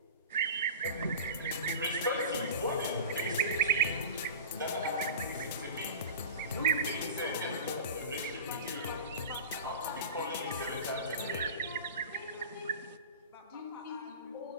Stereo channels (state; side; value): inverted; both; correlation -0.32